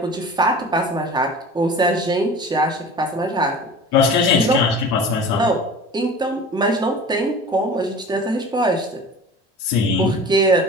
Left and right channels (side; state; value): both; normal; correlation 0.39